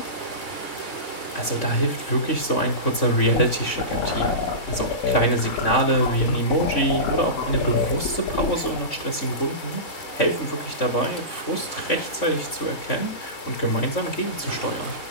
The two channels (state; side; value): late; right; 3.6 ms